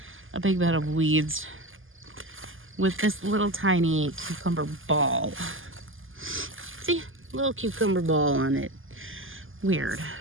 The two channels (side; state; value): left; late; 0.59 ms